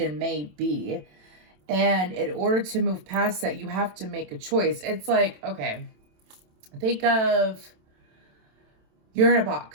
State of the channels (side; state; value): left; late; 27 ms